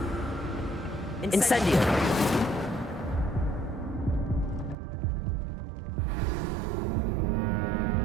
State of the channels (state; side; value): drops out; left; at 4.8 s